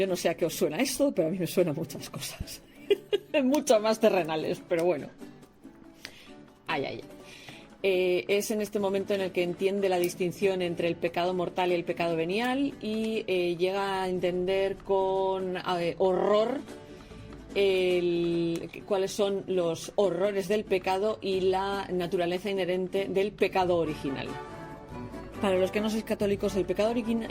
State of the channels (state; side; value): identical; both; correlation 1.00